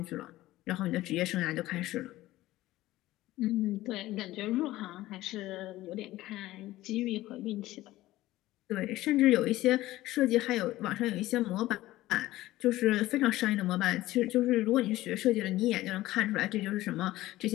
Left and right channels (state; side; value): quieter; right; 16.5 dB